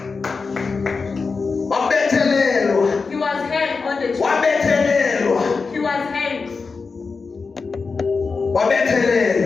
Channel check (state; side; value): quieter; right; 4.6 dB